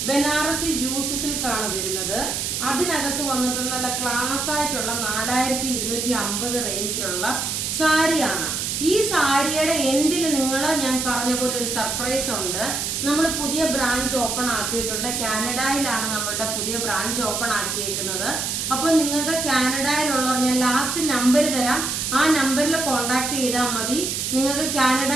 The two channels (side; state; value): right; noise; hiss, 1 dB below the sound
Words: ബനാറസി ജൂട്ട് സിൽക്ക് ആണ് വരുന്നത്. അതിനകത്ത് വന്നിട്ടുള്ള നല്ല ക്ലാസ് ആയിട്ടുള്ള 4250 റേഞ്ചിലുള്ള സാരിയാണ്. ഈ സാരിയുടെ എൻഡിൽ ഞാൻ പറഞ്ഞ പോലെ ഒരു സർപ്രൈസ് ഉണ്ട്. നമ്മൾ പുതിയ ബ്രാഞ്ച് ഓപ്പൺ ആക്കിയിട്ടുണ്ട്. കാനഡയിലാണ് നമ്മളുടെ പുതിയ ബ്രാഞ്ച് ഓപ്പൺ ആക്കിയേക്കുന്നത്. അപ്പൊ നിങ്ങൾക്ക് കാനഡയിലുള്ളവർ ഞാൻ ലാസ്റ്റ് നമ്പർ തരാം, ആ നമ്പറിൽ കോണ്ടാക്ട് ചെയ്താൽ മതി. നിങ്ങൾക്ക്